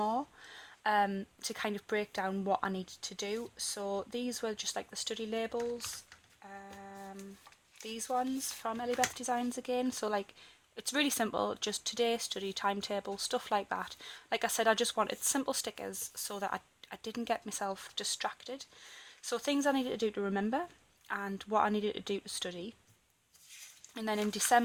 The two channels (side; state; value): both; identical; correlation 1.00